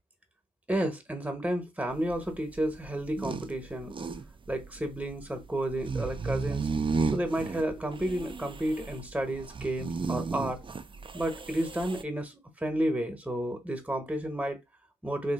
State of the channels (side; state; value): both; normal; correlation 0.86